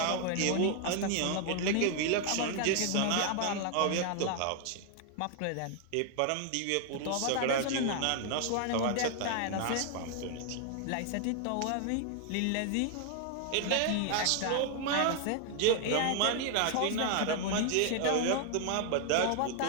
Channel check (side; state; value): both; different; correlation 0.00